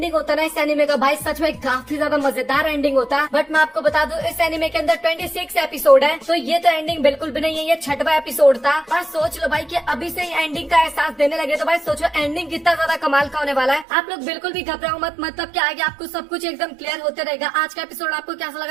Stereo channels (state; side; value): drops out; left; at 13.9 s